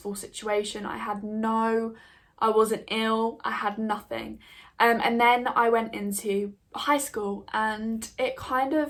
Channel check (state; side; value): identical; both; correlation 1.00